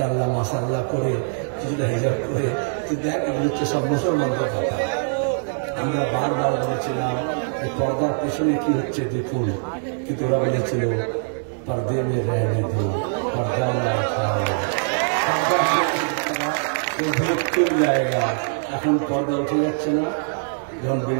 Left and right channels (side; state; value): left; silent; 64 dB below the other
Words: মাশাআল্লাহ করে, কিছুটা হিজাব করে। তুই দেখ, এগুলো হচ্ছে সব মুসলমানদের কথা। আমরা বারবার বলেছিলাম এই পর্দার পেছনে কি হচ্ছে দেখুন, কিন্তু ওরা বলেছিল পর্দে মে রহনে দো, পর্দা না উঠাও, জায়গা। এখন পর্দা উঠে যাচ্ছে না। যখন